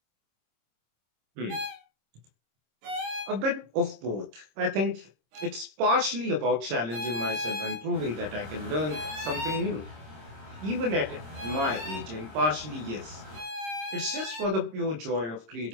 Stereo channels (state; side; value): late; left; 26 ms